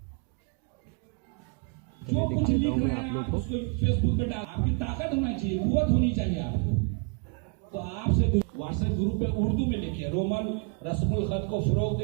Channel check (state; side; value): quieter; left; 33.9 dB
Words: चलिए दिखा देता हूँ मैं आप लोग को। फेसबुक पे डाल, आपकी ताकत होना चाहिए, कुव्वत होनी चाहिए आपको। तो आपसे व्हाट्सएप ग्रुप पे उर्दू में लिखिए, रोमन रस्मुल खत को फरोग